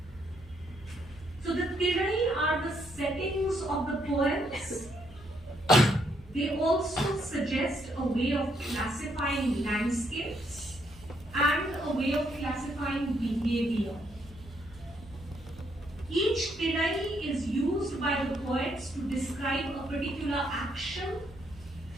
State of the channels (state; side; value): normal; both; correlation 0.73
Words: So the Tinai are the settings of the poems. They also suggest a way of classifying landscapes and a way of classifying behavior. Each Tinai is used by the poets to describe a particular action